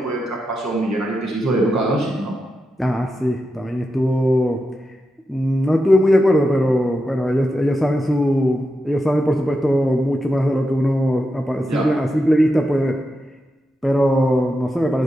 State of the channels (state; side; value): normal; both; correlation 0.88